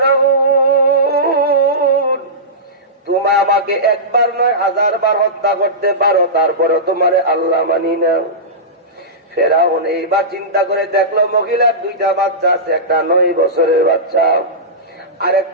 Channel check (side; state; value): both; normal; correlation -0.17